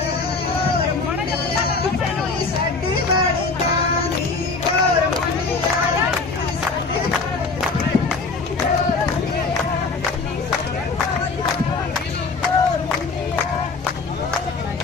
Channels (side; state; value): right; quieter; 4.2 dB